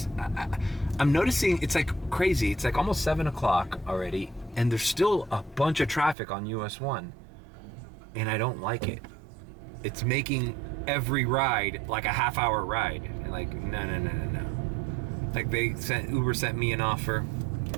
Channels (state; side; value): drops out; left; at 6.2 s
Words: I'm noticing it's like crazy. It's like almost 7 o'clock already, and there's still a bunch of traffic on US 1. And I don't like it. It's making every ride like a half-hour ride. And like, no. Like Uber sent me an offer